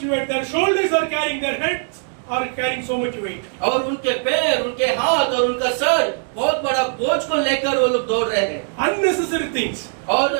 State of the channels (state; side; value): silent; left; 57 dB below the other